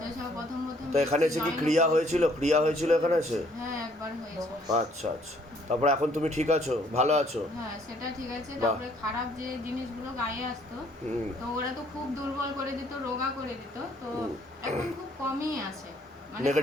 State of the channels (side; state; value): both; normal; correlation 0.63